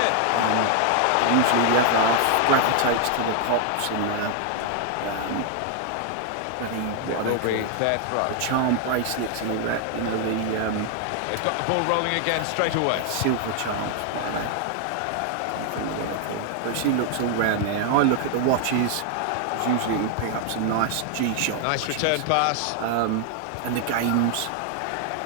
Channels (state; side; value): different; both; correlation 0.00